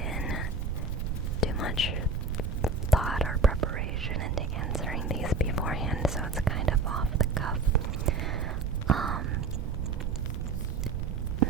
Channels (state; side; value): noise; right; rumble, 1 dB below the sound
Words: in too much thought or preparation into